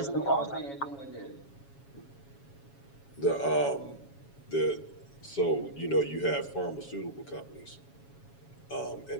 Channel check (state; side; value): late; right; 7.2 ms